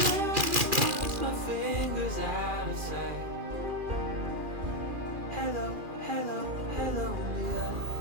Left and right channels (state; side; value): late; left; 2.4 ms